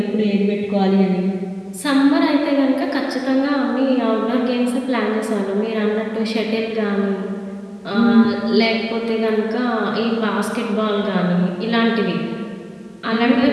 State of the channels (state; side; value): identical; both; correlation 1.00